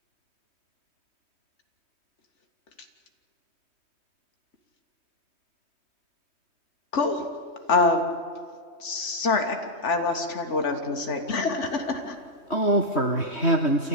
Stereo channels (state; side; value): late; right; 3.4 ms